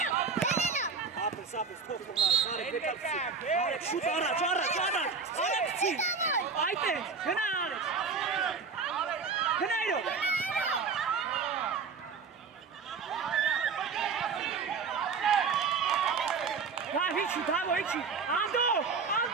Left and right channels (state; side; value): quieter; left; 5.2 dB